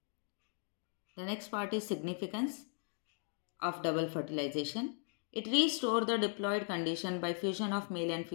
The next part is significance of double fertilization. It restores the diploid condition by fusion of male and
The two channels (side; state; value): right; silent; 52 dB below the other